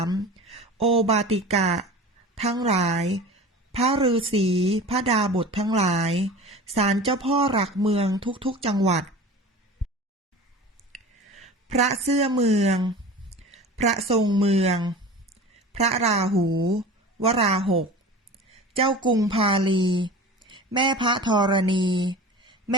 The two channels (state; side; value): normal; both; correlation 0.36